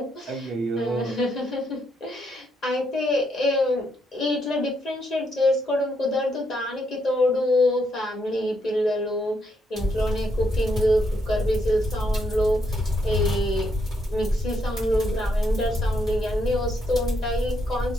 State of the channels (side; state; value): both; normal; correlation 0.77